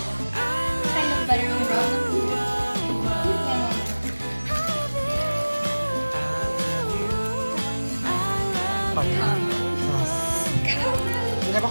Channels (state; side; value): inverted; both; correlation -1.00